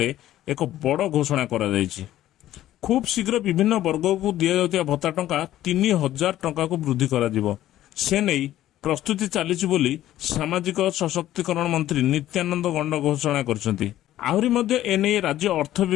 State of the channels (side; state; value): right; quieter; 13.5 dB